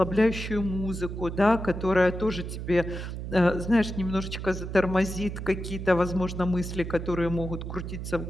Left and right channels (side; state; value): right; noise; hum, 7 dB below the sound